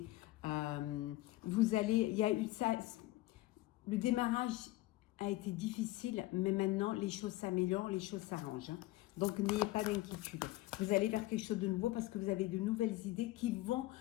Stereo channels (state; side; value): quieter; right; 17.8 dB